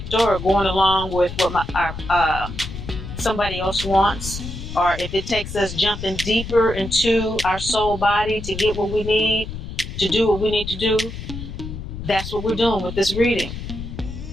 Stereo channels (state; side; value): noise; left; rumble, 9 dB below the sound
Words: or going along with what somebody else wants, or if it takes us jumping deeper into our soul body to get what we need, to do what we need to do, that's what we're doing with this reading.